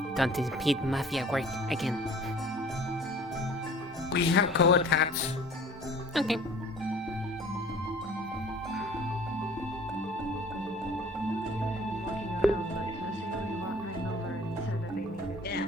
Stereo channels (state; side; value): normal; both; correlation 0.48